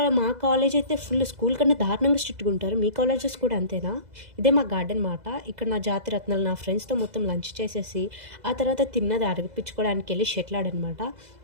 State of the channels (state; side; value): late; left; 2.0 ms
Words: మా కాలేజ్ అయితే ఫుల్ స్కూల్ కన్నా దారుణంగా స్ట్రిక్ట్గా ఉంటారు. మీ కాలేజెస్ కూడా అంతేనా? ఇదే మా గార్డెన్ మాట. ఇక్కడ నా జాతి రత్నాలు నా ఫ్రెండ్స్తో మొత్తం లంచ్ చేసేసి ఆ తర్వాత తిన్నది అడిపించుకోవడానికి వెళ్ళి షటిల్ ఆడనమాట.